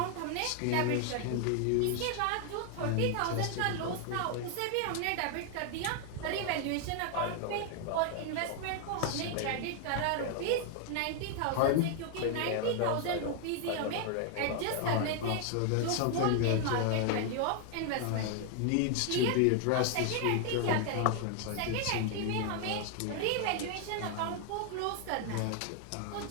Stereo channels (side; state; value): both; different; correlation 0.00